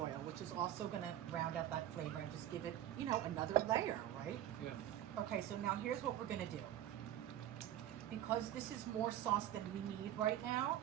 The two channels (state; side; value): quieter; left; 12.2 dB